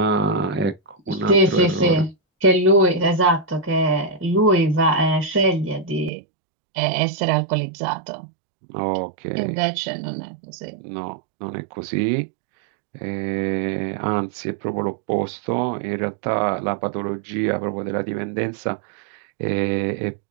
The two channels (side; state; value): left; drops out; at 6.1 s